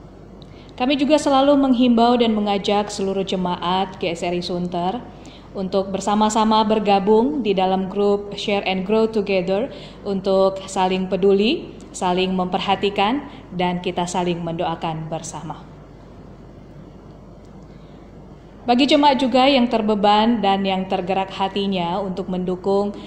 Kami juga selalu menghimbau dan mengajak seluruh jemaat GSRI Sunter untuk bersama-sama bergabung di dalam grup Share and Grow Together untuk saling peduli, saling memperhatikan, dan kita saling mendoakan bersama. Bagi jemaat juga yang terbeban dan yang tergerak hatinya untuk mendukung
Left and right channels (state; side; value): identical; both; correlation 1.00